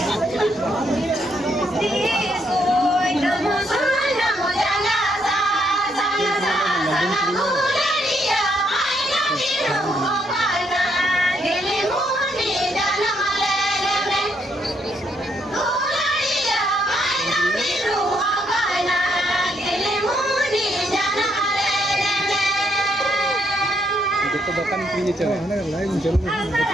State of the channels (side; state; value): both; normal; correlation 0.74